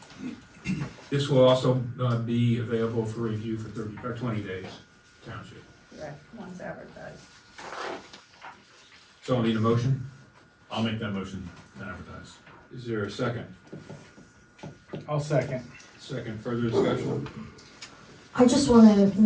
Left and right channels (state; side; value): identical; both; correlation 1.00